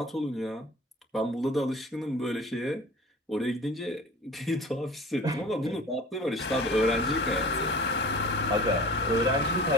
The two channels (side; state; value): both; normal; correlation 0.41